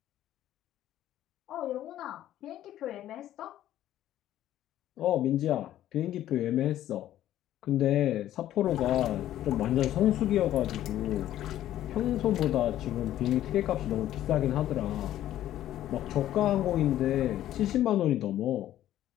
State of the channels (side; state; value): right; quieter; 12.7 dB